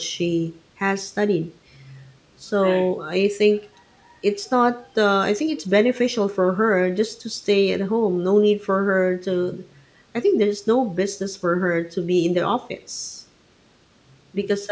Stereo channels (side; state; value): both; identical; correlation 1.00